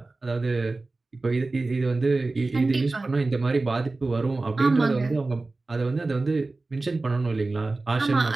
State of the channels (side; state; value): left; quieter; 3.3 dB